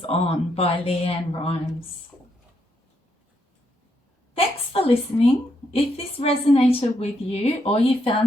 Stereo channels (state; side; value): normal; both; correlation 0.78